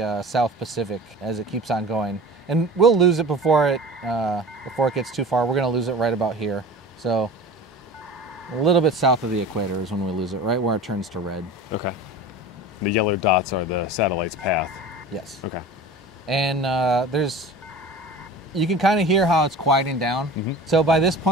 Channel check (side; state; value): both; normal; correlation 0.38